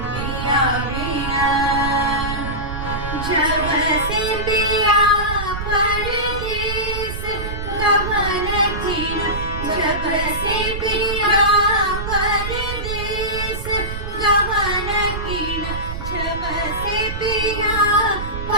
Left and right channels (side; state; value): right; noise; rumble, 6 dB below the sound